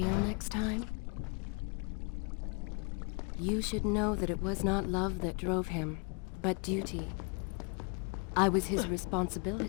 next time? You should know that it was not love that drove him, but duty. I was his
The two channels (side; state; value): right; quieter; 35.6 dB